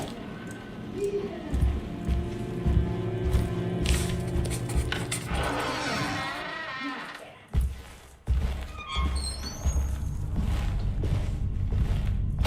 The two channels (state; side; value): identical; both; correlation 1.00